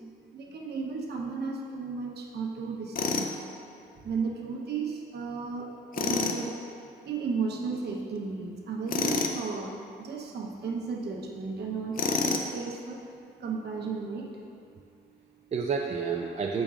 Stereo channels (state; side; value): normal; both; correlation 0.43